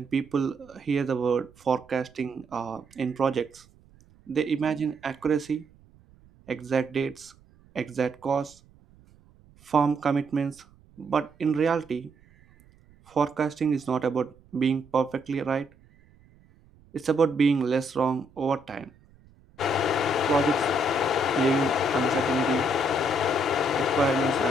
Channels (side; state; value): right; noise; rumble, 28 dB below the sound